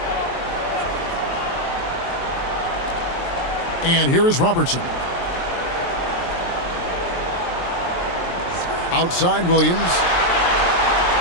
And here is Robertson. Outside Williams.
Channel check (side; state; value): right; late; 23 ms